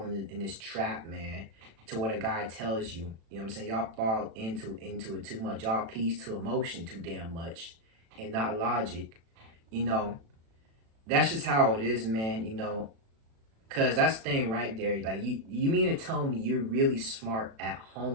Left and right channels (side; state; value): left; late; 36 ms